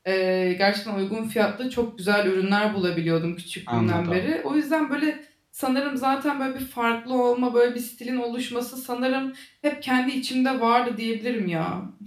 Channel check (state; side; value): identical; both; correlation 1.00